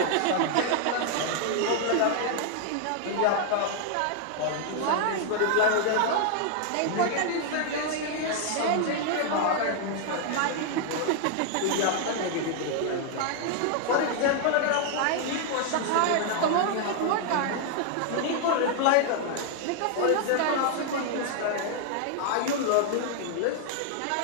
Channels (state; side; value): different; both; correlation 0.00